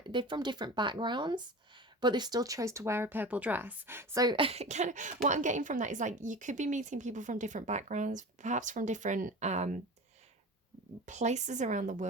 They're from different backgrounds, but they still chose to wear a purple dress. So kind of what I'm getting from that is like you could be meeting people from different backgrounds, perhaps from different places around the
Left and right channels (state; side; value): normal; both; correlation 0.34